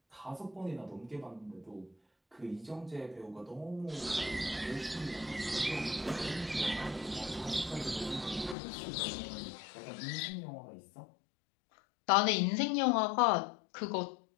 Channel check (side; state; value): right; drops out; at 8.6 s